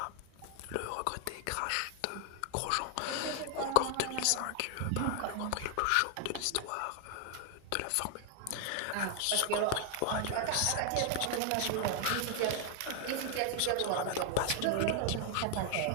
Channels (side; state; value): both; different; correlation 0.00